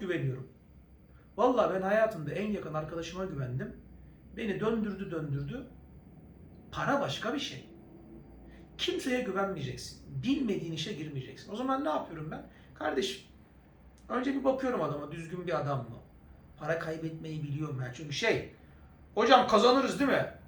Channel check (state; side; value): identical; both; correlation 1.00